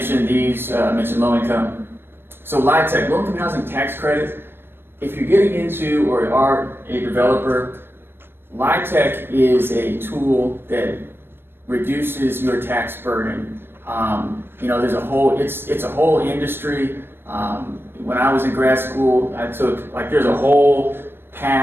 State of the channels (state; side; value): late; left; 0.10 ms